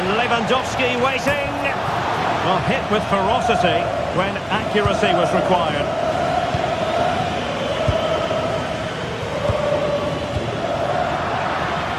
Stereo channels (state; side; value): identical; both; correlation 1.00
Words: Lewandowski waiting. Well, hit with ferocity when accuracy was required.